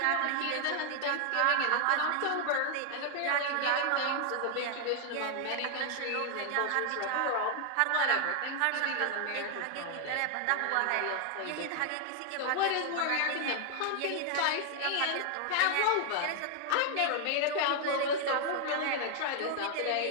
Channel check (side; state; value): both; different; correlation 0.00